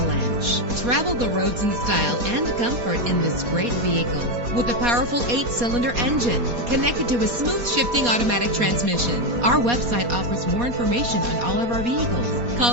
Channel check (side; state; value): left; late; 4.2 ms